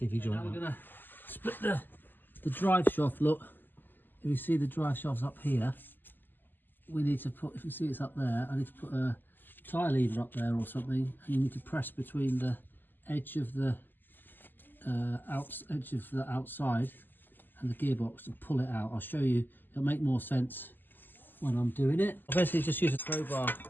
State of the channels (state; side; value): late; right; 0.091 ms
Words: joint out. We're gonna split the drive shaft. Look, if you see the drive shaft's up here, we need to put, if you see it's up there, I need to put a tie lever up there or something, and you need to press between the edge of the outside and the gearbox and pull it out. I'll show you, it'll make more sense when I'm doing it. I'll basically just use a crowbar